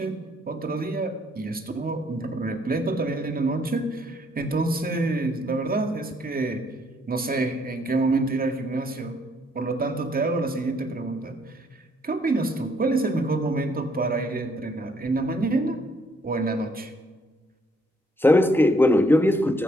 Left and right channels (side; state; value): both; normal; correlation 0.67